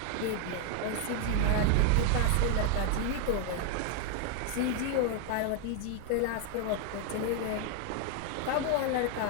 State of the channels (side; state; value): both; different; correlation 0.01